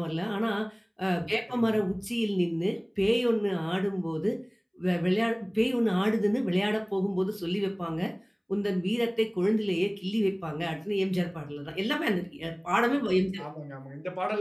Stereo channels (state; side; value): identical; both; correlation 1.00